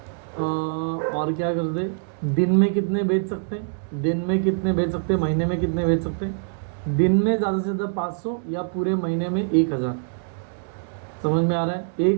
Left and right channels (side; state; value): left; silent; digital silence